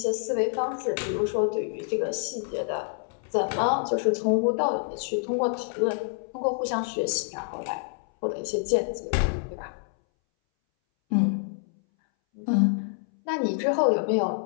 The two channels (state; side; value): silent; right; 60 dB below the other